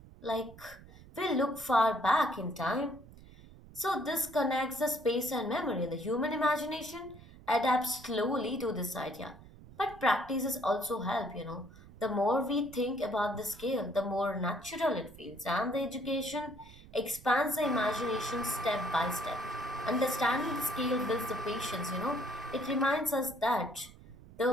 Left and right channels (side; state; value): right; noise; rumble, 20 dB below the sound